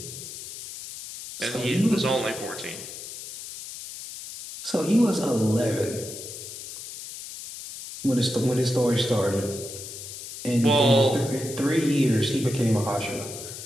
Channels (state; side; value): noise; left; hiss, 11 dB below the sound